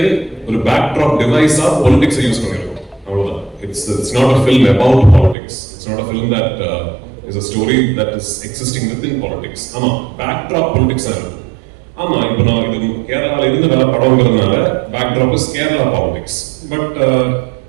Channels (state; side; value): drops out; left; at 5.4 s